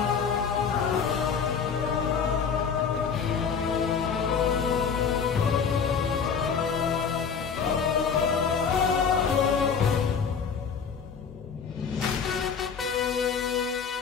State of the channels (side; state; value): right; quieter; 6.3 dB